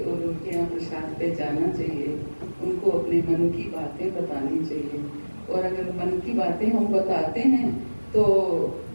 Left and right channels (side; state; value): both; inverted; correlation -1.00